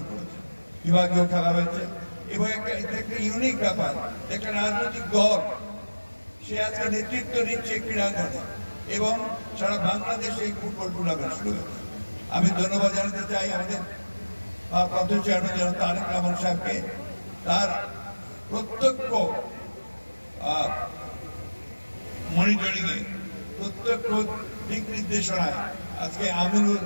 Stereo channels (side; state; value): both; inverted; correlation -1.00